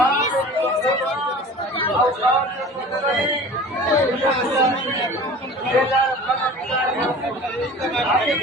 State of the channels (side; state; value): both; normal; correlation 0.41